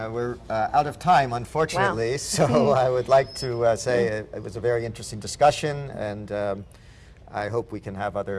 We're out of time, unfortunately, so I would like to say it was a very interesting discussion, and I hope we can have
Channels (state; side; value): identical; both; correlation 1.00